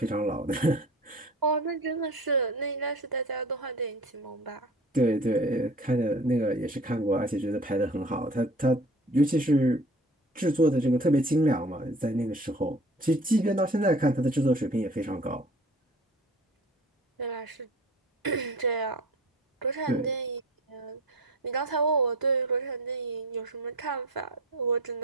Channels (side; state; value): both; normal; correlation 0.43